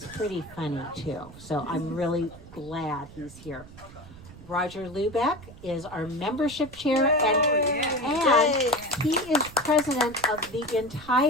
pretty funny too. So I'm really glad he's here. Roger Lubeck is our membership chair, and he is president of the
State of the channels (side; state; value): right; noise; rumble, 18 dB below the sound